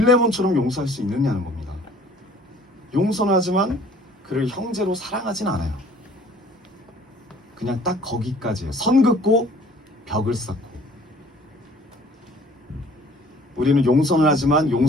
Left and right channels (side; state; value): both; normal; correlation 0.53